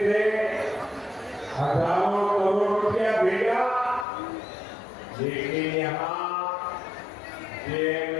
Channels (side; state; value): right; drops out; at 4.0 s